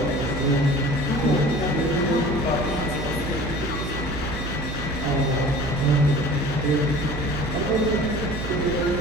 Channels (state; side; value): noise; right; hum, 6 dB below the sound